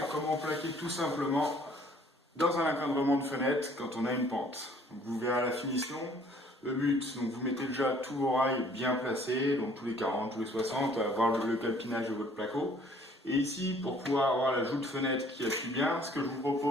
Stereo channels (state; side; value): normal; both; correlation 0.58